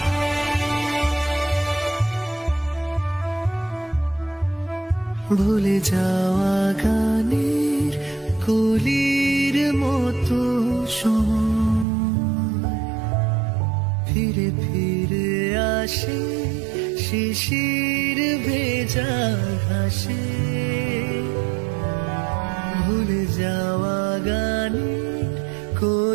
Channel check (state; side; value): drops out; left; at 11.9 s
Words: ভুলে যাওয়া গানের কলির মতো সময় ফিরে ফিরে আসে শিশির ভেজা ঘাসে। ভুলে যাওয়া গানের